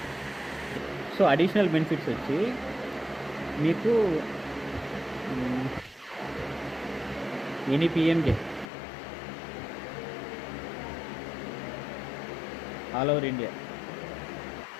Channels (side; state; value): right; drops out; at 8.7 s